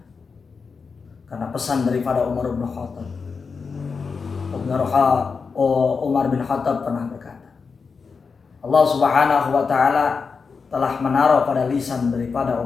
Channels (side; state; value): right; quieter; 5.2 dB